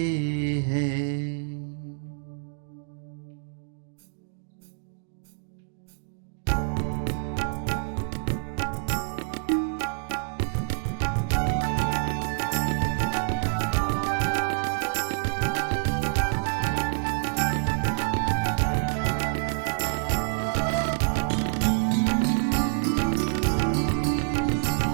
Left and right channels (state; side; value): silent; left; digital silence